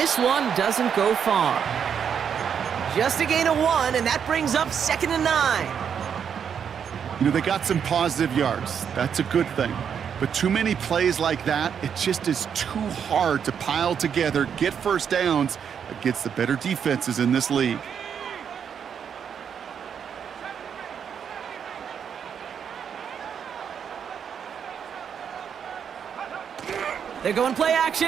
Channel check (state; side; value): quieter; left; 7.6 dB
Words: one doesn't go far. Just a gain of 1, and that brings up 2nd and 9. You know, they got some positive yards. That's a good thing. But too many plays like that, it just is too hard to pile together, get 1st downs against the better defenses in this league. They're going play